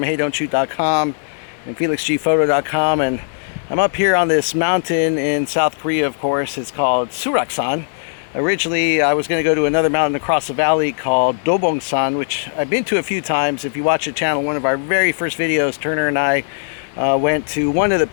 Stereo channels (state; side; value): silent; right; digital silence